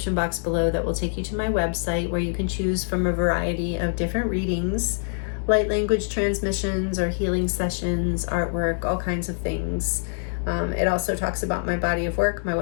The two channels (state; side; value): silent; right; digital silence